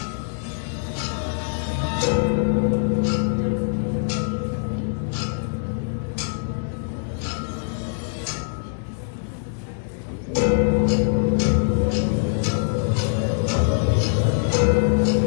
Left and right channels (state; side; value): silent; right; digital silence